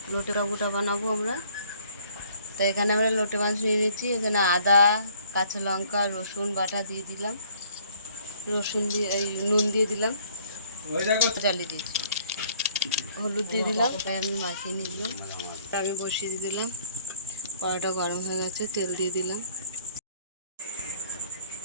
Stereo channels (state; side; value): inverted; both; correlation -0.59